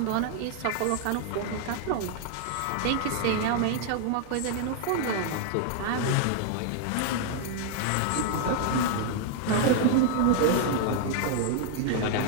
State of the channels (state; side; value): different; both; correlation 0.00